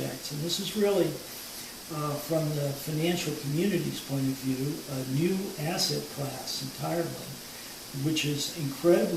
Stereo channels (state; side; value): identical; both; correlation 1.00